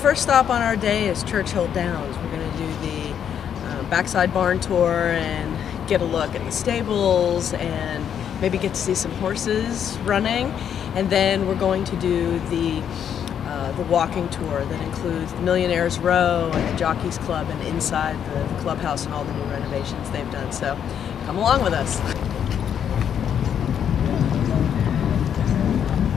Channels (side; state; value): right; quieter; 8.7 dB